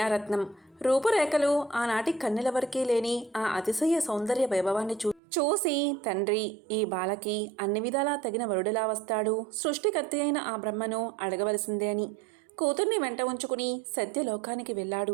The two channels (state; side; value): drops out; left; at 5.2 s